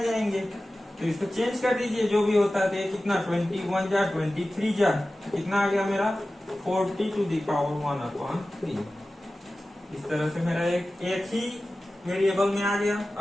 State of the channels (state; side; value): normal; both; correlation 0.95